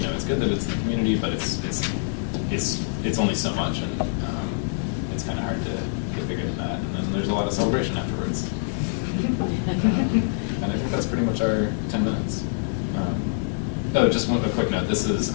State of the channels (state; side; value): silent; right; digital silence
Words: good that it's in the community, but it's only so much, and it's kind of hard to get bigger than that. And then there's a lot of celebration afterwards. And I think that's pretty much our 10 minutes. Just a quick note. This is